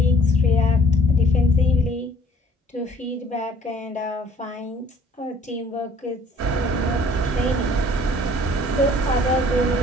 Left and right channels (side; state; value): both; normal; correlation 0.56